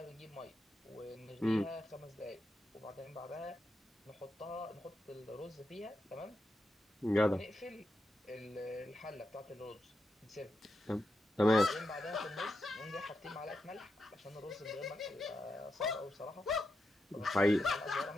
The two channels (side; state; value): both; normal; correlation 0.86